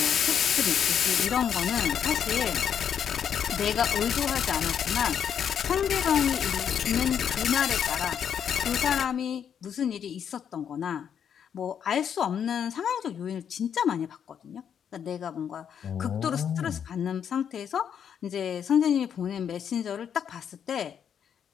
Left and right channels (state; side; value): quieter; right; 8.2 dB